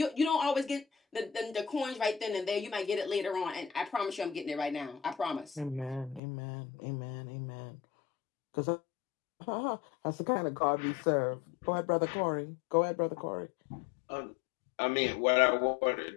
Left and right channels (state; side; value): drops out; right; at 6.2 s